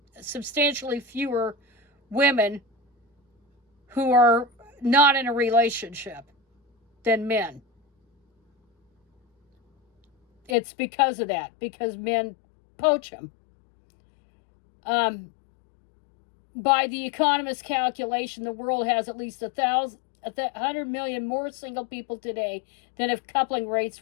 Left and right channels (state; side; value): drops out; right; at 10.6 s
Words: substantially fewer women who are not in a relationship than men. It's because of that, because men poach them. By the Economist calculation, the world has at least 100 million more single people today than if coupling rates